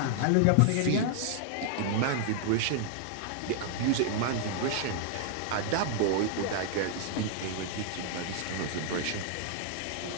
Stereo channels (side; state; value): both; different; correlation 0.00